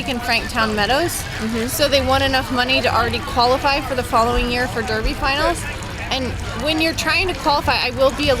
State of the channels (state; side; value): identical; both; correlation 1.00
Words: in Franktown Meadows. So they won enough money to already qualify for the following year for Derby finals. And when you're trying to qualify, I will be a